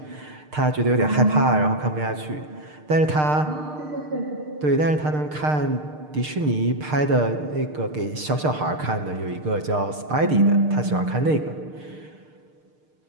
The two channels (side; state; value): left; late; 6.6 ms